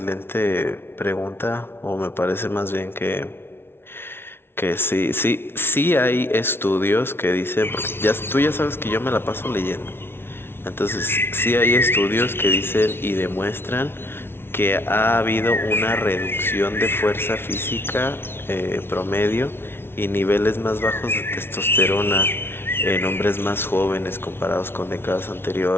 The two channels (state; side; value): late; right; 0.11 ms